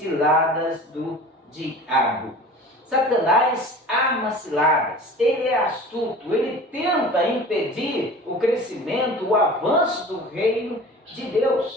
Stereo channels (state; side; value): normal; both; correlation 0.40